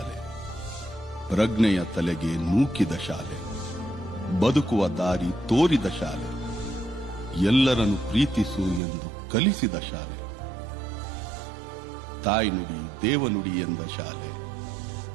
ಪ್ರಜ್ಞೆಯ ತಲೆಗೆ ನೂಕಿದ ಶಾಲೆ, ಬದುಕುವ ದಾರಿ ತೋರಿದ ಶಾಲೆ, ಎಲ್ಲರನ್ನು ಪ್ರೀತಿಸು ಎಂದು ಕಲಿಸಿದ ಶಾಲೆ, ತಾಯಿ ನುಡಿ ದೇವನುಡಿ ಎಂದ ಶಾಲೆ.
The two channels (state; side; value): drops out; left; at 8.8 s